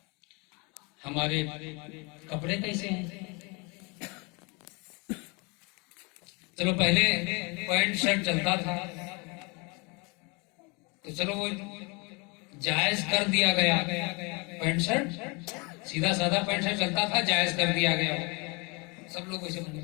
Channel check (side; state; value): right; quieter; 29.8 dB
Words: हमारे कपड़े कैसे हैं? चलो पहले पैंट शर्ट चलता था, तो चलो वो जायज कर दिया गया। पैंट शर्ट, सीधा साधा पैंट शर्ट चलता था, जायज कर दिया गया, सब लोग वैसे बने।